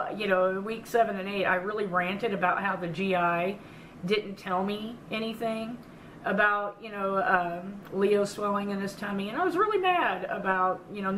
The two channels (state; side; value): identical; both; correlation 1.00